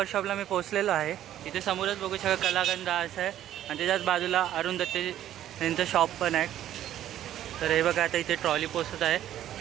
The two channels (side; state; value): left; quieter; 12.0 dB